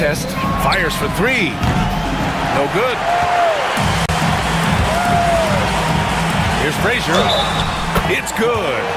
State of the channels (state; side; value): identical; both; correlation 1.00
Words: Fires for 3. No good. Here's Frazier. It's good.